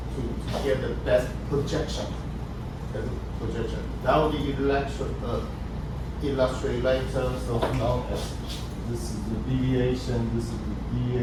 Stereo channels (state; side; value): identical; both; correlation 1.00